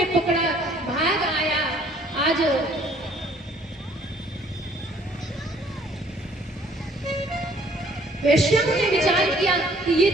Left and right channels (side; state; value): both; normal; correlation 0.59